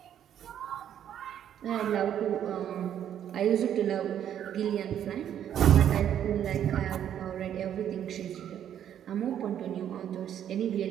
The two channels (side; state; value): left; quieter; 10.0 dB